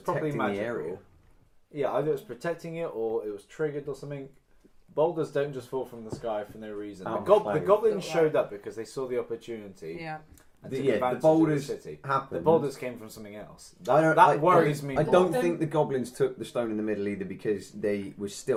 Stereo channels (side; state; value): both; identical; correlation 1.00